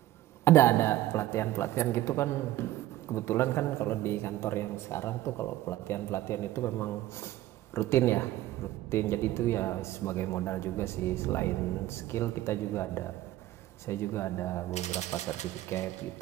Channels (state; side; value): quieter; left; 14.9 dB